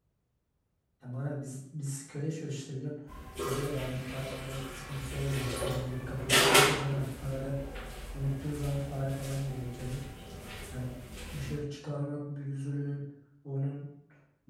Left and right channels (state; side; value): identical; both; correlation 1.00